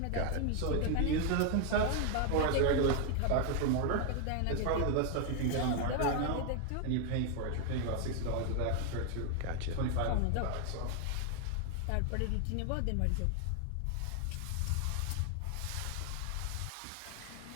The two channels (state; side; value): different; both; correlation 0.00